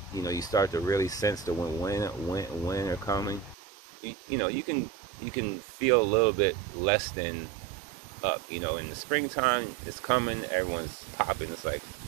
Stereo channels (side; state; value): left; drops out; at 3.6 s